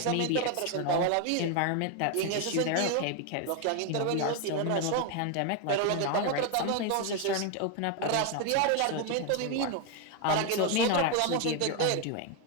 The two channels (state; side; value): different; both; correlation 0.01